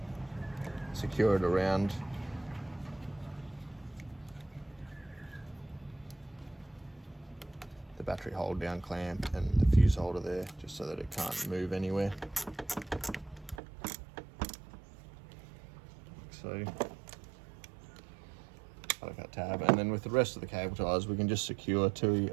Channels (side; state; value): left; drops out; at 13.6 s